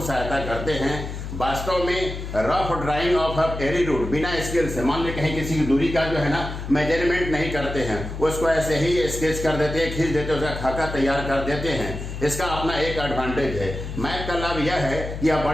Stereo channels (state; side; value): noise; left; hum, 7 dB below the sound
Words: सहायता करते हैं। वास्तव में rough drawing of airy route बिना स्केल से, मान ली कहीं किसी की दूरी का जो है ना मेजरमेंट नहीं करते हैं, उसको ऐसे ही स्केच कर देते हैं, खींच देते हैं, उसका खाका तैयार कर देते हैं। इसका अपना एक एडवांटेज है। मैप का लाभ यह है कि यह